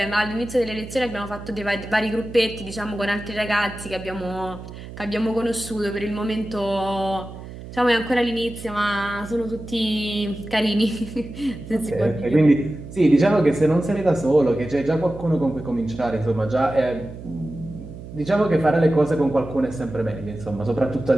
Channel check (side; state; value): right; noise; hum, 13 dB below the sound